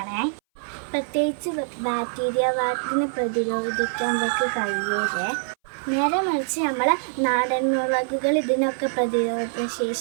പ്രത്യേകിച്ച് ബാക്ടീരിയ വാട്ടിനെ പ്രതിരോധിക്കാൻ അവർക്ക് കഴിയൂലേ. നേരെ മറിച്ച് നമ്മളെ നാടൻ മുളകുകൾ ഇതിനൊക്കെ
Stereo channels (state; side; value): silent; left; 60 dB below the other